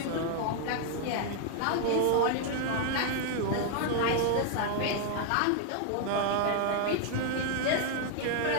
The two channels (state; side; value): different; both; correlation 0.00